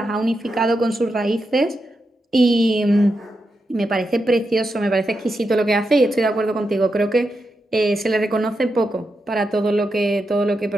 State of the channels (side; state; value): both; normal; correlation 0.86